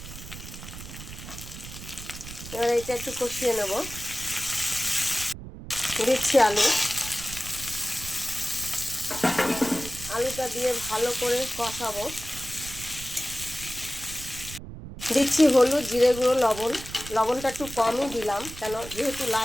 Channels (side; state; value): right; noise; rumble, 12 dB below the sound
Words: এবার এটা একটু কষিয়ে নেব। দিচ্ছি আলু। আলুটা দিয়ে ভালো করে কষাবো। দিচ্ছি হলুদ, জিরে গুঁড়ো, লবণ। লবণটা একটু কমই দিলাম, কেন যেহেতু